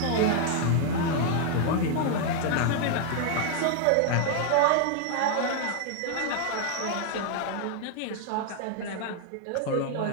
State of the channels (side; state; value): both; different; correlation 0.00